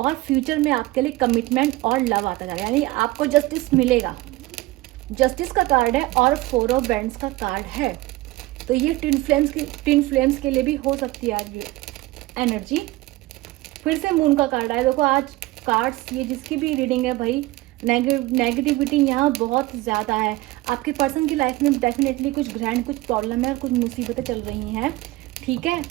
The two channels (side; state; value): left; quieter; 19.2 dB